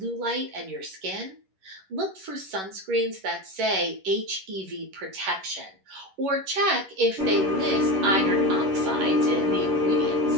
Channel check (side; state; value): left; late; 10 ms